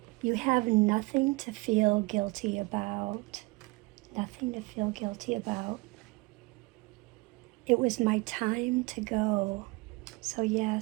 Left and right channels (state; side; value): quieter; left; 24.9 dB